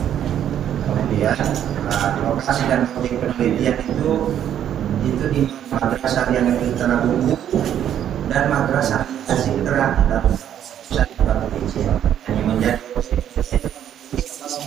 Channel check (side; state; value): left; quieter; 10.2 dB